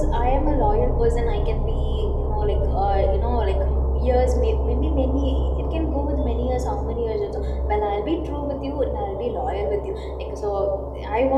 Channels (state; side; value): identical; both; correlation 1.00